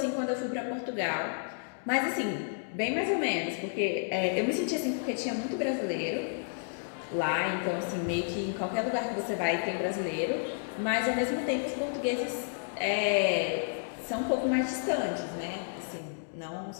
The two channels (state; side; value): silent; right; digital silence